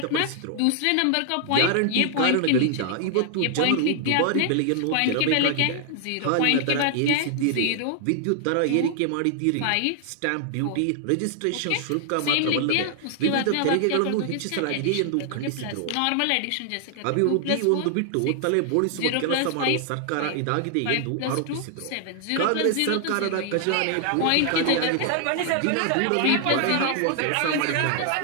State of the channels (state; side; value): different; both; correlation 0.00